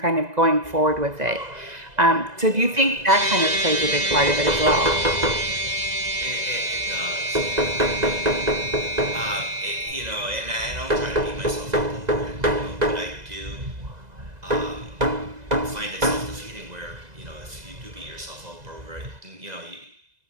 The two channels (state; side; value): late; left; 2.0 ms